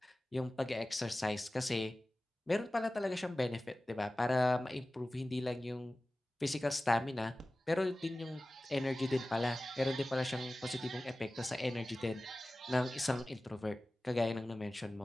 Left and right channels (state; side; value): normal; both; correlation 0.97